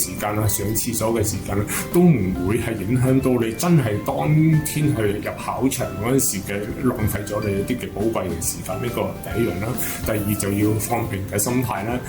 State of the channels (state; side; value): identical; both; correlation 1.00